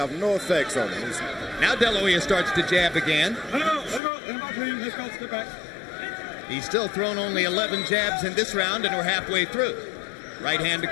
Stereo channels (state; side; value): drops out; right; at 4.0 s